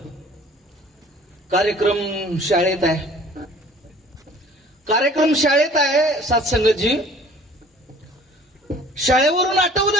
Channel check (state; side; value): normal; both; correlation 0.50